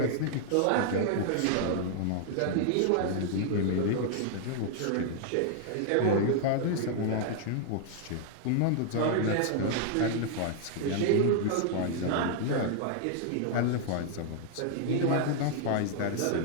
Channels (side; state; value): both; different; correlation 0.00